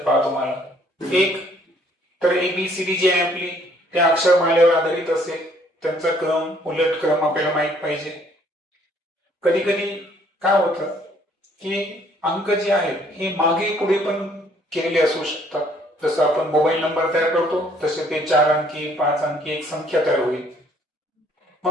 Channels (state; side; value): normal; both; correlation 0.62